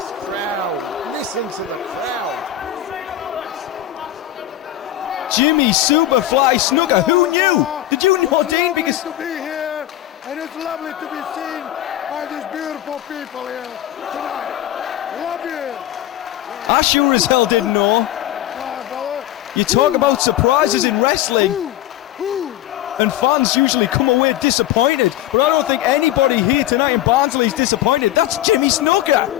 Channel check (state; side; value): quieter; right; 13.1 dB